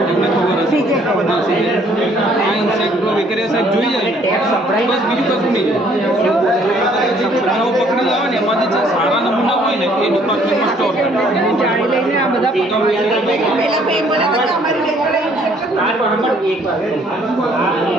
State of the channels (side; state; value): both; normal; correlation 0.62